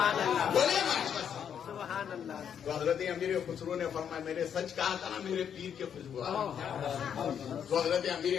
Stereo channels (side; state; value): right; quieter; 8.3 dB